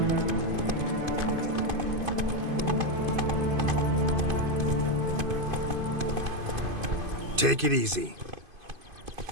Take it easy.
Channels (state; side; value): late; left; 2.5 ms